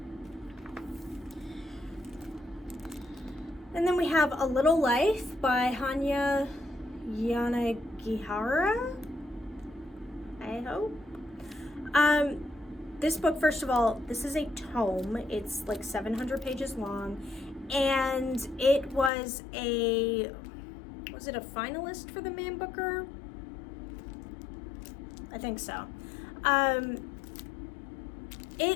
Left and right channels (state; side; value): drops out; right; at 19.1 s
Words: And then we have A Little Life by Hanya Yanagihara, I hope. This book, first of all, this is a tome. It's like 700 pages long, and it was it a finalist for the Man Booker? I think so.